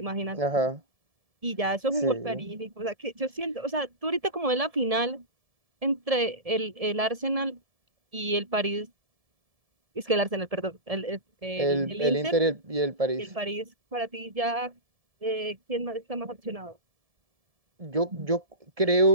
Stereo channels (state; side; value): late; left; 1.7 ms